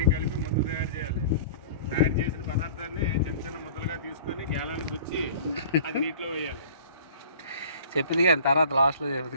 కలిపి ముద్ద తయారు చేయాలి. తయారు చేసిన పదార్థాన్ని చిన్న చిన్న ముద్దలుగా తీసుకొని గేలాన్ని గుచ్చి అది నీటిలో వేయాలి. చెప్పింది కానీ తర్వాత లాస్ట్లో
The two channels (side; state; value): both; inverted; correlation -0.44